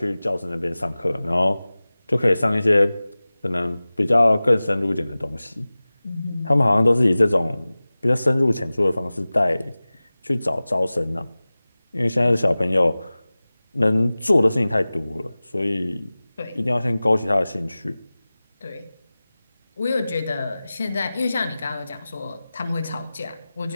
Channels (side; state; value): both; inverted; correlation -0.98